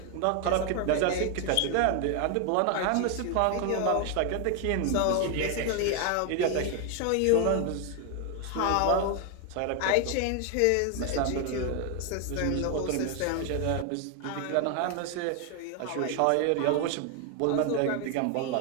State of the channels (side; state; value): both; different; correlation 0.01